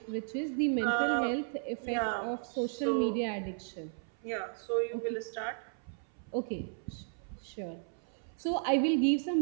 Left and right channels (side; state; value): left; silent; 55 dB below the other